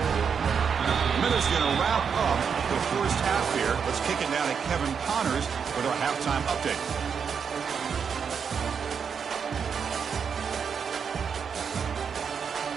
Miller's going to wrap up the first half here. Let's kick it down to Kevin Connors with our halftime update.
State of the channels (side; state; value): left; quieter; 6.6 dB